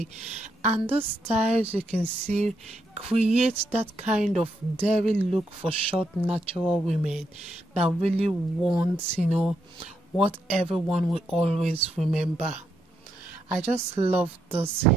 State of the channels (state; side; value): normal; both; correlation 0.79